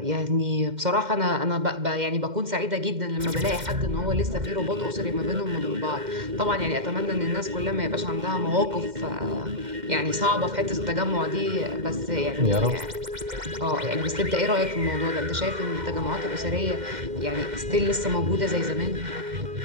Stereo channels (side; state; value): left; late; 2.1 ms